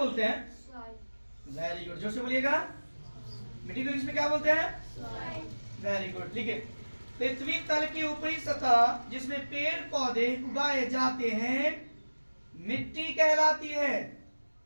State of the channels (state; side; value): inverted; both; correlation -1.00